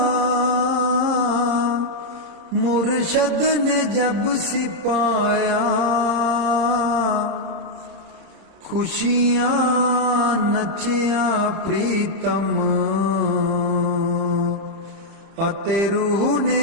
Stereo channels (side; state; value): left; late; 31 ms